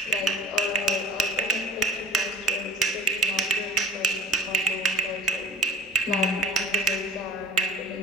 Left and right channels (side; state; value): both; normal; correlation 0.41